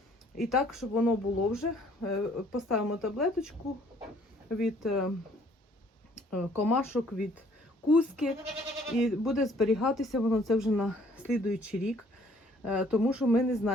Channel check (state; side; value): normal; both; correlation 0.60